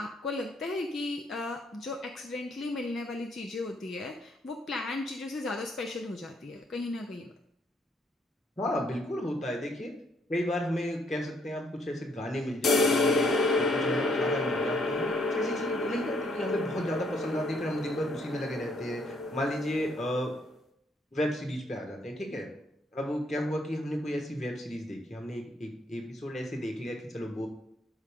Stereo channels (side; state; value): both; normal; correlation 0.69